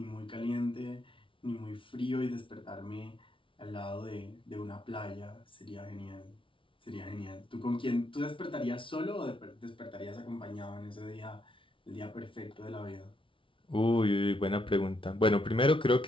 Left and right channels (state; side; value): late; right; 0.25 ms